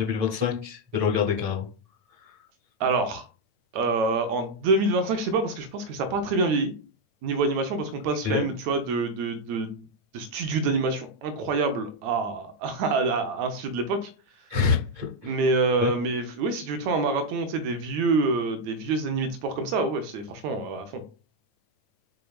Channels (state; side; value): late; left; 9.2 ms